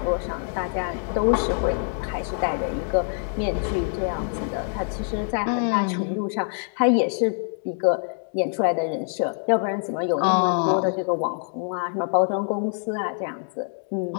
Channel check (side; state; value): right; silent; 62 dB below the other